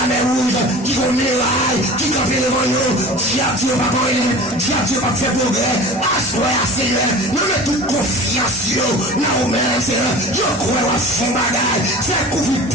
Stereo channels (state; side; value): normal; both; correlation 0.37